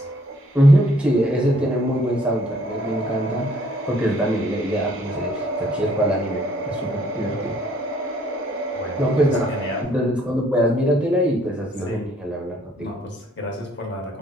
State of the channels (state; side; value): normal; both; correlation 0.63